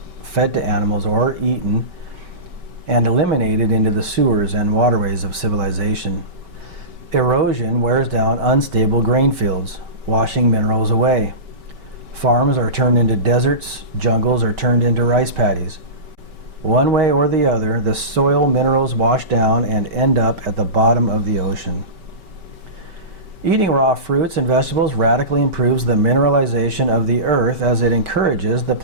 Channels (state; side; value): late; left; 5.2 ms